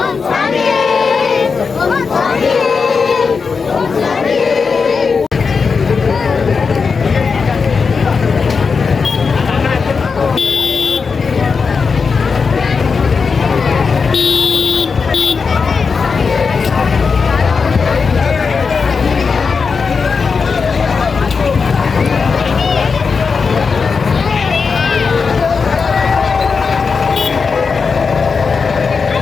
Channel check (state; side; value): quieter; right; 5.2 dB